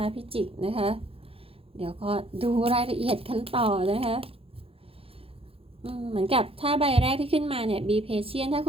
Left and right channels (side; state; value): left; late; 0.27 ms